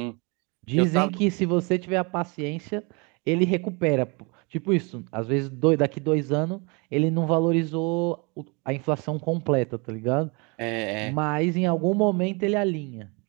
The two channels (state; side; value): quieter; left; 30.4 dB